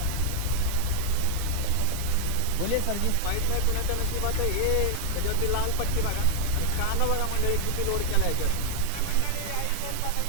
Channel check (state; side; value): different; both; correlation 0.00